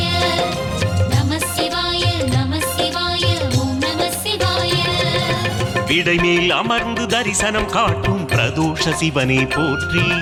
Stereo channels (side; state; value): both; identical; correlation 1.00